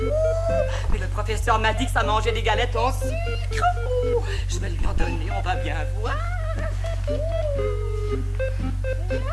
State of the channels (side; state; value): both; identical; correlation 1.00